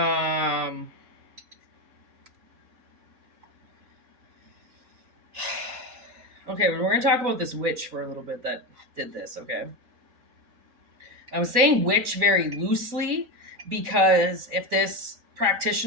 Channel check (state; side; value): late; left; 4.1 ms